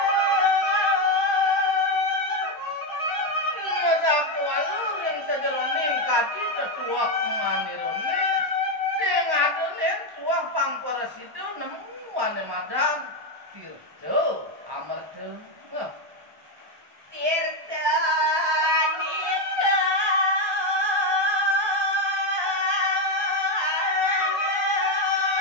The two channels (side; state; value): left; late; 1.2 ms